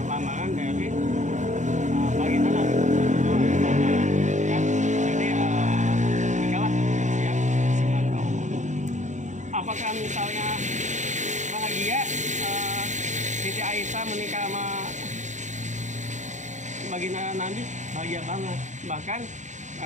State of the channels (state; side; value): late; left; 0.35 ms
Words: lamaran dari baginda Nabi ya. Jadi nikahlah usia 9 tahun. Apakah misalnya bahagia Siti Aisyah menikah sama baginda Nabi? Bahagia banget. Bahkan